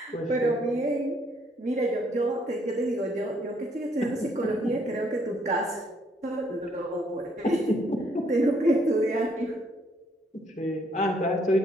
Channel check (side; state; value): both; normal; correlation 0.68